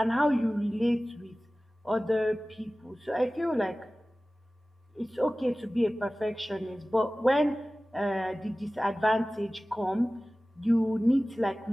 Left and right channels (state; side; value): normal; both; correlation 0.97